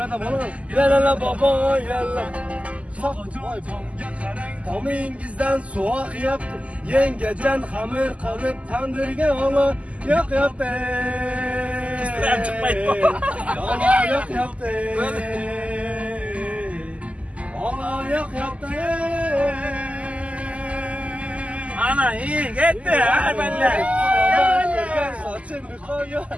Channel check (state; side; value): late; left; 0.066 ms